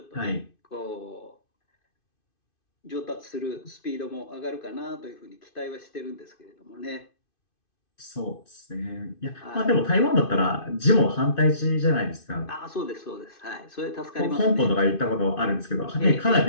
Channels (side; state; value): right; late; 2.5 ms